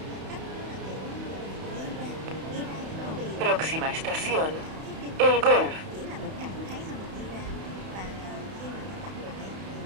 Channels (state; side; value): late; left; 31 ms